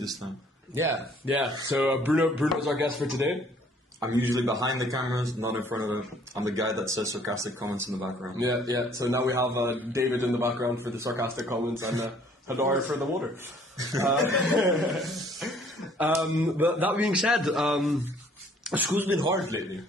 time. Yeah. So Bruno's our guest for today. I'm usually behind the cameras, not in front of it. I'm the guy that says sarcastic comments in the background. Yeah. So now we have David in the background for the sarcastic comments and Hadar for the water. But that being said, school's been hard lately.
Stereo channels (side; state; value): both; normal; correlation 0.59